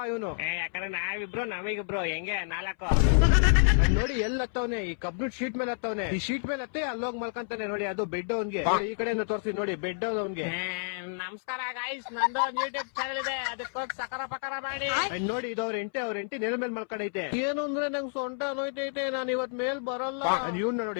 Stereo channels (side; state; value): right; silent; 58 dB below the other